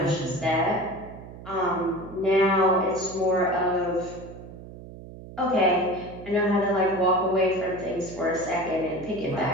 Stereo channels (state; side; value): noise; right; hum, 15 dB below the sound